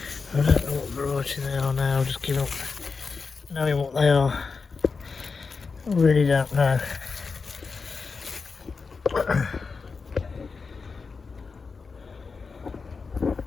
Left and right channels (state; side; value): quieter; right; 4.8 dB